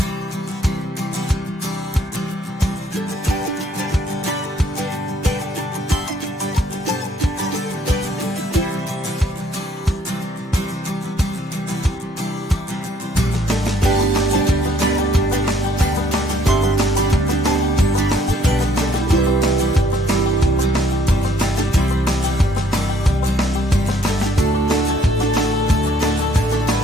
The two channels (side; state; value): both; normal; correlation 0.63